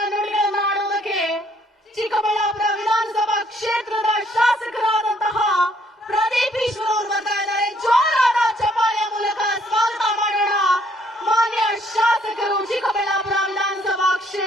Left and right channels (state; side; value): normal; both; correlation 0.66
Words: ನುಡಿಗಳನ್ನು ಆಡುವುದಕ್ಕೆ ಚಿಕ್ಕಬಳ್ಳಾಪುರ ವಿಧಾನಸಭಾ ಕ್ಷೇತ್ರದ ಶಾಸಕರಾದಂತಹ ಪ್ರದೀಪ್ ಈಶ್ವರ್ ಅವರು